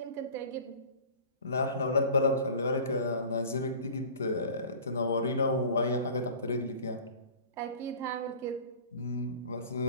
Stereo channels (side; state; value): both; inverted; correlation -0.42